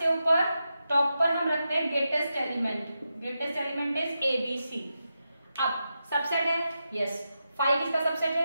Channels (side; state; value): both; inverted; correlation -0.88